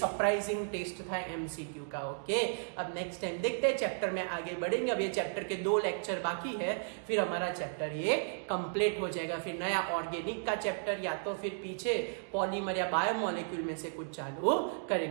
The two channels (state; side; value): silent; left; digital silence